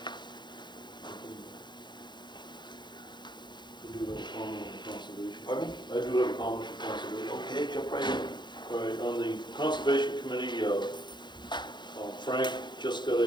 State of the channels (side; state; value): right; late; 0.22 ms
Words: I do have a comment on conservation. Pardon me? I do have a comment on conservation. Okay, jump right in. All right, on the Conservation Committee, Frank just got